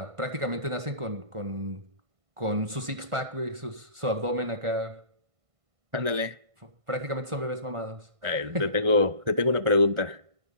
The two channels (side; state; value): left; late; 1.5 ms